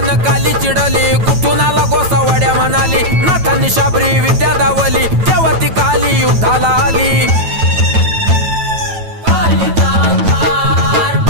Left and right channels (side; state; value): left; late; 9.1 ms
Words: काली चिडली कुठून आला गोसावड्या म्हणाली नाथांनी शाबरी विद्या दावली तेव्हा ती काली युद्धाला आली